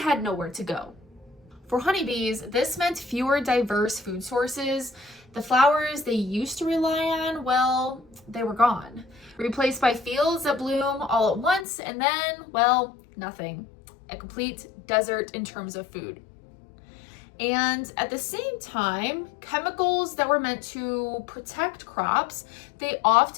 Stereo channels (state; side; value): drops out; right; at 11.7 s